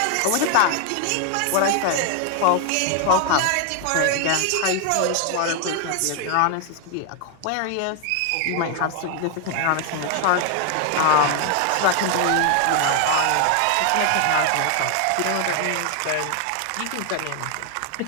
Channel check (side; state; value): both; different; correlation 0.00